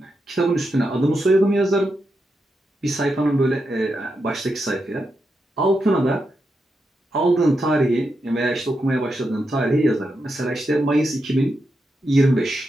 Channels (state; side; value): normal; both; correlation 0.85